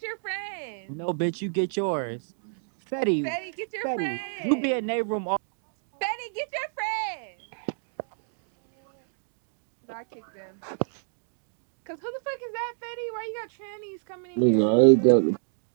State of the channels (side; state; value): left; silent; digital silence